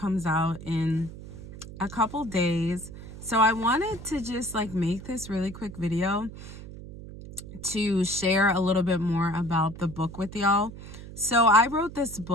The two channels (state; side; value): noise; right; hum, 13 dB below the sound